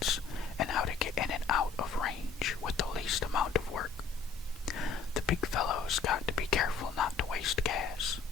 and how to get in and out of range with the least amount of work. The big fellows got to be careful not to waste gas.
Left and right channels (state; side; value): quieter; right; 5.2 dB